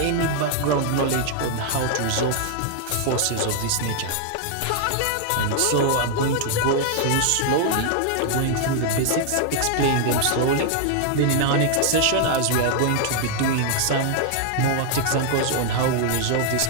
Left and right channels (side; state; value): both; different; correlation 0.00